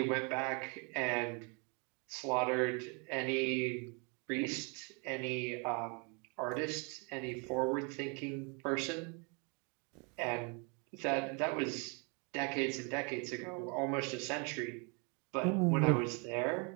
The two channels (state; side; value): quieter; left; 34.0 dB